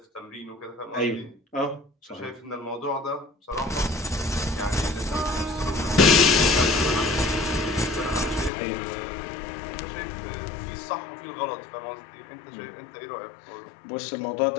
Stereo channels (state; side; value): drops out; right; at 8.5 s